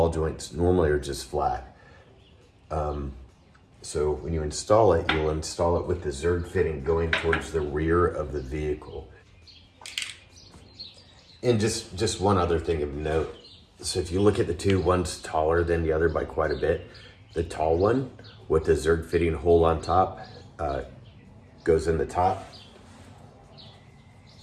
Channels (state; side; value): identical; both; correlation 1.00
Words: joints normally are just flat. So when you install it, you'll install it with the Zerk fitting going towards the rear of the vehicle. And just one other thing of note. So if you look at the two, one's taller than the other by quite a bit. The tall one with the Zerk fitting hole on top goes in the top.